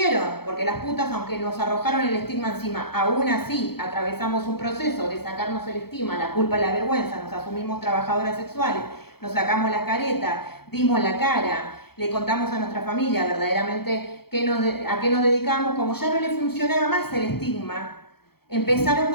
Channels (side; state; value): right; late; 0.96 ms